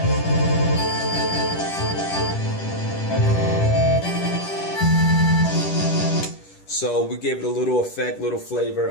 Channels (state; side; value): late; right; 10 ms